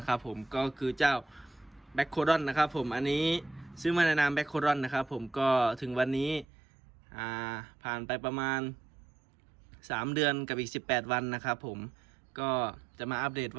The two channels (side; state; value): left; drops out; at 6.5 s